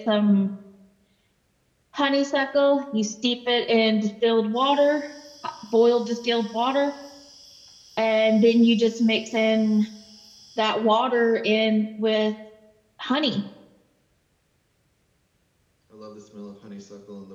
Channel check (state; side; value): identical; both; correlation 1.00